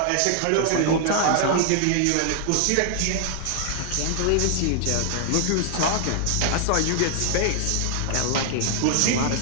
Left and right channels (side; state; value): both; different; correlation 0.00